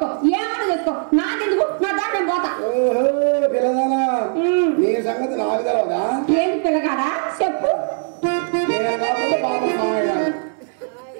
ఏమైనా చేసుకో, నాకెందుకు? నా దాన్ని నేను పోతా. ఓహో పిల్లదానా, నీ సంగతి నాకు తెలవదా? ఏంటి పిల్లగాడా చెప్పు. నేను కాకపోతే బాబా మామయ్య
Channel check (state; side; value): silent; left; 60 dB below the other